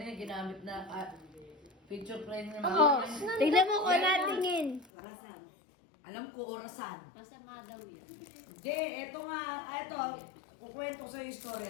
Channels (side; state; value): right; drops out; at 4.9 s